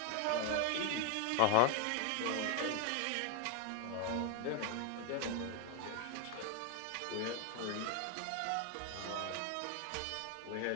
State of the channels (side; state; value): both; different; correlation 0.00